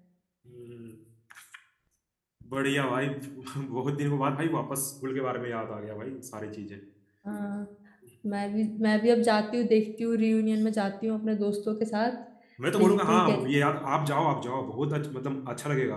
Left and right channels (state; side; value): identical; both; correlation 1.00